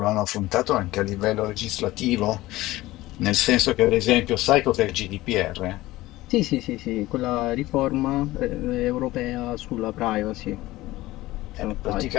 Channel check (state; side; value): quieter; right; 17.7 dB